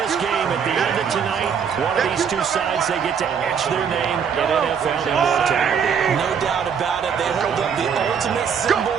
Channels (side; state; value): left; quieter; 7.1 dB